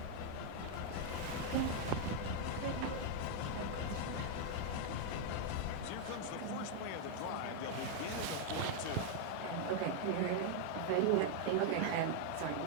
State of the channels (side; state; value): both; different; correlation 0.00